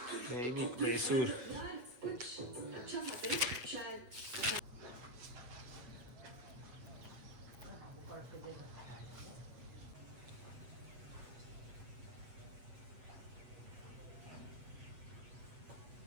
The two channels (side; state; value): left; late; 7.9 ms